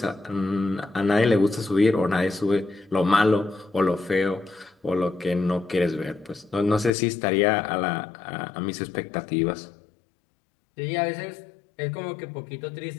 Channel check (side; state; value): right; drops out; at 6.9 s